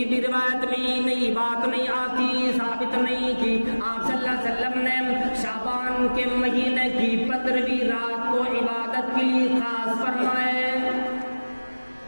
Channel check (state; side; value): inverted; both; correlation -1.00